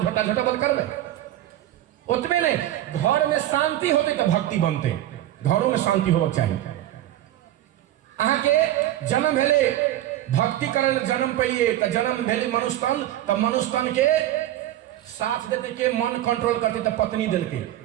झोटा झोटा बल करबे उतने नहीं घर में शांति होते तो भक्ति बनते घरों में शांति होना चाहिए अहाँ के जन्म भेले भक्ति करे जन्म पड़िए तो जन्म भेले मनुष्यतन तो मनुष्यतन के साथ देते के मन कंट्रोल करते तो पत्नी दिल के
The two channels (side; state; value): left; quieter; 13.4 dB